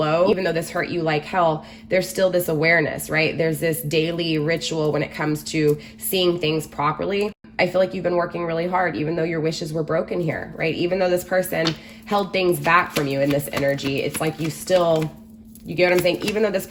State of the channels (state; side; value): identical; both; correlation 1.00